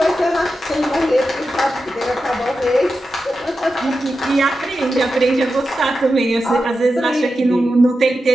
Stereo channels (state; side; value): normal; both; correlation 0.90